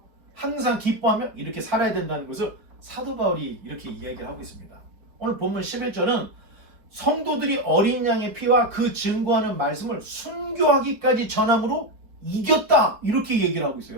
항상 기뻐하며 이렇게 살아야 된다는 것을 사도 바울이 이렇게 이야기를 하고 있습니다. 오늘 본문 11절은 성도들이 어린 양의 피와 그 증거하는 말씀을 순교하기까지 전함으로 이겼다, 이렇게 얘기를 하고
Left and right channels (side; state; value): left; late; 4.4 ms